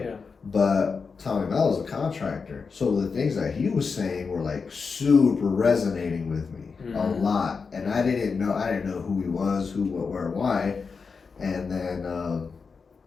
Yeah. But Tommy Mello's a contractor, so the things that he was saying were like super resonating with me a lot, and I didn't know who he was, who, what, where, why, and then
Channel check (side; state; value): right; quieter; 5.1 dB